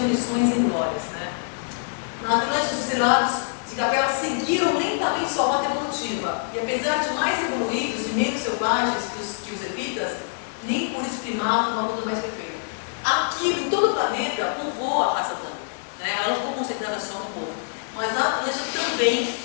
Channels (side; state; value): right; silent; 62 dB below the other